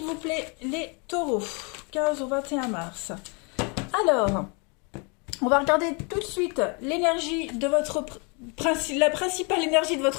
vous plaît, les taureaux. 15 au 21 mars. Alors, on va regarder tout de suite l'énergie de votre... la principale énergie de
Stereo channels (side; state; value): right; quieter; 33.3 dB